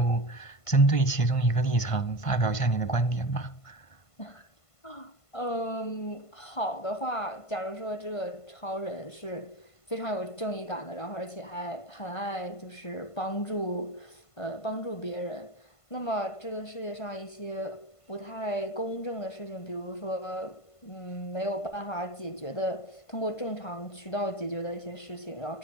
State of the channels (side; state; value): right; late; 1.5 ms